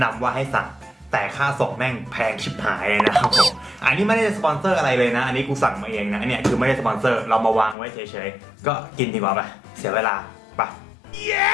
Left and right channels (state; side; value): drops out; right; at 7.8 s